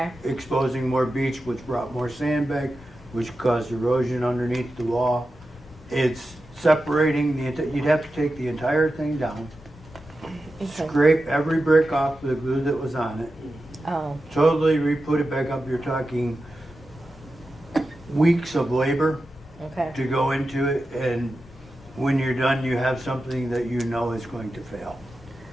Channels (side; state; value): both; normal; correlation 0.91